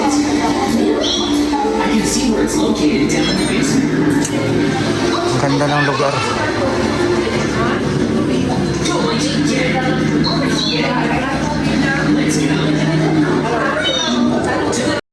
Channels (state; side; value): identical; both; correlation 1.00